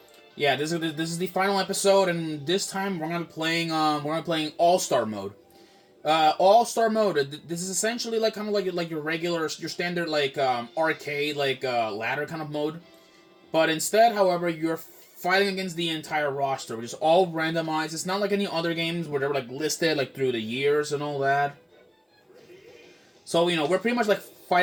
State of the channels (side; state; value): both; identical; correlation 1.00